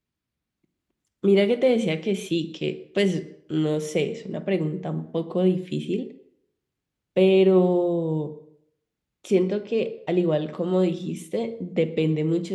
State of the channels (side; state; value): both; identical; correlation 1.00